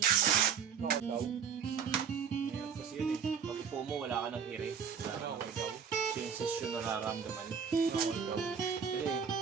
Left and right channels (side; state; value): left; quieter; 7.0 dB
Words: Ikaw? Ngayon kasi yun eh. Pag upo mo, wala ka ng ire. Wala ka ng ikaw. Sensasyon na nararamdaman. Ikaw.